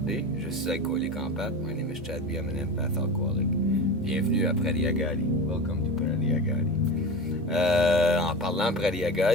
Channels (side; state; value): both; normal; correlation 0.27